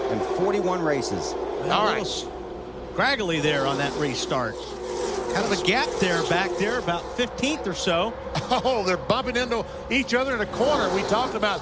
and 41 races. All right. Scraggly there on that restart. Kind of a gap there back there, about 15th or so. Oh, they're bumping into each other in a corner. We talked about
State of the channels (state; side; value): identical; both; correlation 1.00